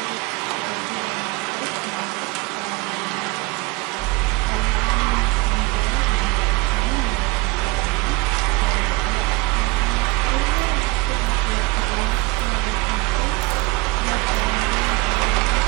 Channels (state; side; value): quieter; left; 22.9 dB